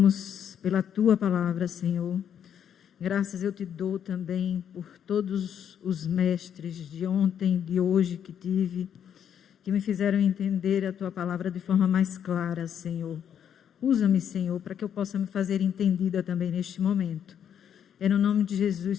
pela tua palavra, Senhor. Graças eu te dou também por todos os mestres de ontem, de hoje que tive, que me fizeram entender a tua palavra de forma mais clara, Senhor. Usa-me, Senhor, para que eu possa me fazer entendida também neste momento. É no nome de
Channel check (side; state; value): right; quieter; 8.9 dB